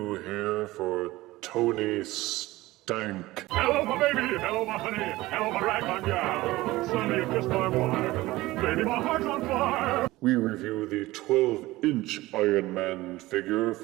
here for Tony Stank. Hello, my baby! Hello, my honey! Hello, my ragtime gal! Sonny, you kissed my wife! Baby, my heart's on fire! We review the 12-inch Iron Man figure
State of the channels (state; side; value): quieter; left; 18.6 dB